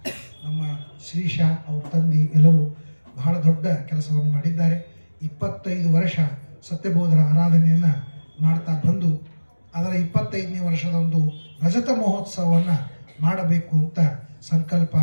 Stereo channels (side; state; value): both; inverted; correlation -1.00